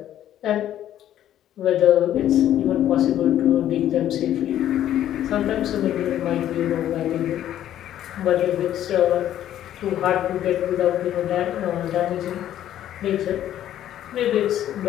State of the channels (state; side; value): quieter; right; 11.7 dB